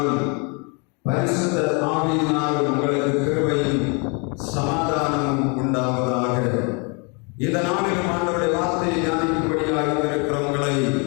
பரிசுத்த ஆவியினாலும் உங்களுக்கு கிருபையும் சமாதானமும் உண்டாவதாக. இந்த நாளிலும் ஆண்டவருடைய வார்த்தையை தியானிக்கும்படியாக இருக்கிறவங்களை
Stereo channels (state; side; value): quieter; right; 33.6 dB